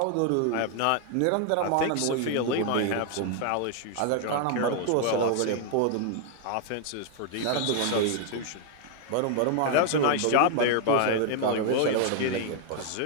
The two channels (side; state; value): both; different; correlation 0.00